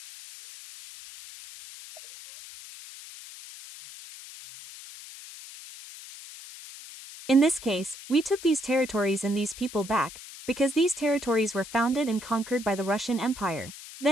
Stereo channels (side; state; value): left; noise; hiss, 15 dB below the sound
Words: In this case, we took these territories and these people back, because these territories were founded and conquered by the Russian Empire,